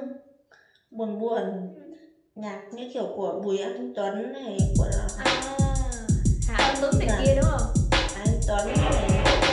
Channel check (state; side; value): identical; both; correlation 1.00